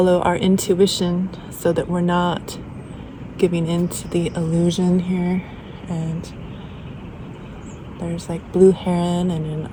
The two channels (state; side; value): identical; both; correlation 1.00